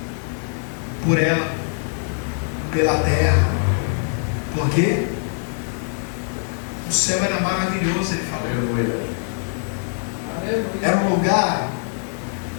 por ela, pela terra. Por quê? O céu era maravilhoso, ele falou. Era um lugar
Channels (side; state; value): right; silent; 56 dB below the other